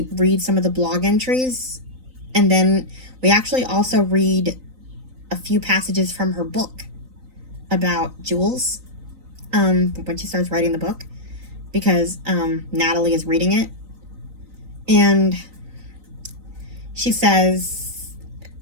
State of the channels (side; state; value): left; late; 3.9 ms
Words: read some of the blog entries, and then we actually also read a few passages from her book about Jules, when she starts writing the book, because Natalie is reading it. And she says,